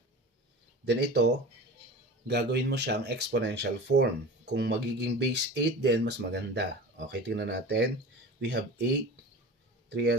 Then ito, gagawin mo siyang exponential form. Kung magiging base 8 din, mas maganda. Okay, tingnan natin. We have 8,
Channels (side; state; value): both; normal; correlation 0.35